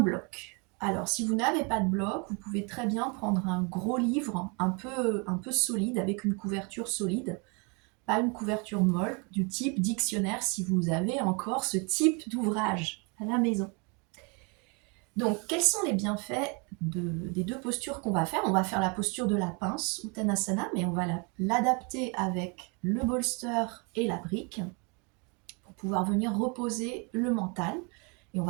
Alors si vous n'avez pas de bloc, vous pouvez très bien prendre un gros livre un peu solide, avec une couverture solide, pas une couverture molle, du type dictionnaire si vous avez encore ce type d'ouvrage à la maison. Donc, quels sont les bienfaits des deux postures qu'on va faire? On va faire la posture de la pince, Uttanasana, mais on va l'adapter avec le bolster et la brique pour pouvoir venir reposer le mental. Et on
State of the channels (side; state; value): left; quieter; 32.8 dB